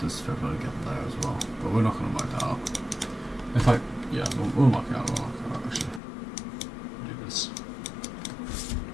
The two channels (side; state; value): right; drops out; at 6.0 s